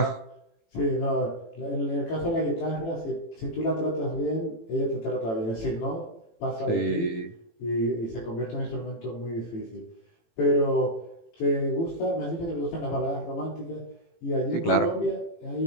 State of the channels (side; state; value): right; late; 18 ms